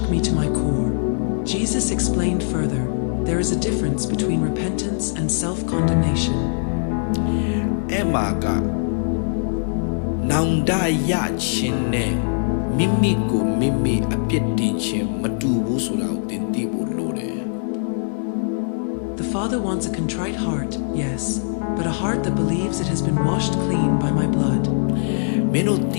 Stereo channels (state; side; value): silent; right; digital silence